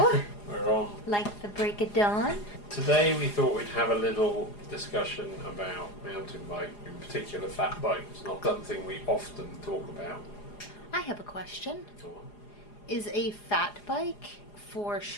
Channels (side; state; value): right; late; 4.9 ms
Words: We're on. Like the break of dawn? Today we thought we'd have a little discussion about mountain bike, in particular fat bikes. Not something we often talk about. I have a question. Go on. Is a fat bike for